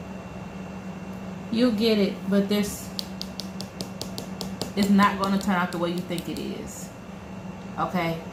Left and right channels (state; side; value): identical; both; correlation 1.00